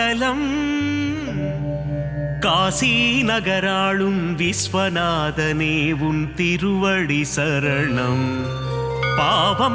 காசி நகராளும் விஸ்வநாதனே உன் திருவடி சரணம்.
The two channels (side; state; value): both; identical; correlation 1.00